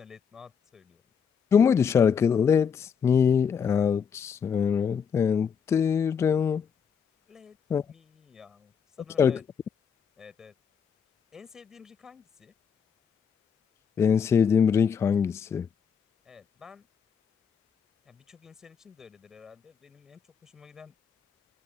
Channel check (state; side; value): quieter; right; 6.8 dB